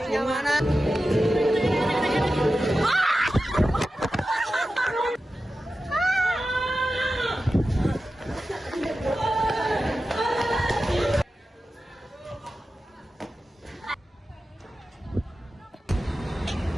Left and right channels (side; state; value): both; normal; correlation 0.93